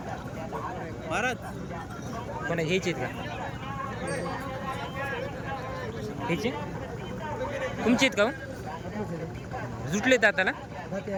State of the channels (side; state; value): both; identical; correlation 1.00